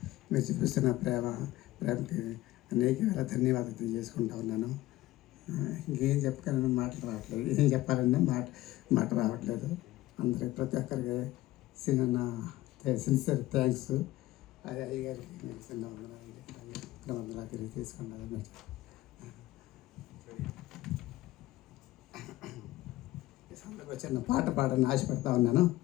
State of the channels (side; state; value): right; quieter; 16.8 dB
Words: మీరు చూపిస్తున్న ప్రేమకి అనేక వేల ధన్యవాదాలు తెలియజేసుకుంటా ఉన్నాను. ఇంకేం చెప్పగలను, మాటలు రావట్లేదు. ఏం చెప్పాలన్నా మాట రావట్లేదు. అందరికి ప్రతి ఒక్కరికి సిన్సియర్ థ్యాంక్స్. అది అయ్యగారికి నేను చిన్న వందలా తిరిగి తీసుకున్నాను. ఈ సందర్భంగా చిన్న పాట పాడని ఆశపడతా ఉన్నాను.